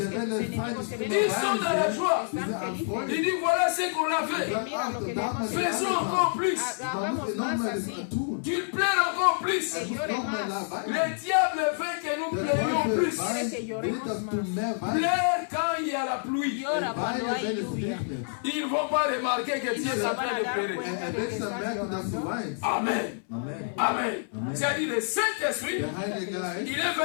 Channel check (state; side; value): silent; right; 59 dB below the other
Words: ils sont dans la joie. Ils disent voilà ce qu'on a fait. Faisons encore plus. Qu'ils plairent encore plus. Le diable veut que nous plairions plus. Plaire quand il y a la pluie. Ils ne vont pas remarquer que Dieu est en train de pleurer. Amen. Amen. C'est-à-dire le Saint-Esprit, il est